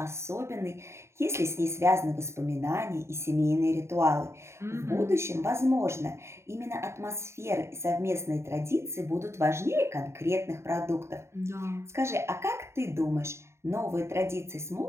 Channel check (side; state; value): left; late; 0.13 ms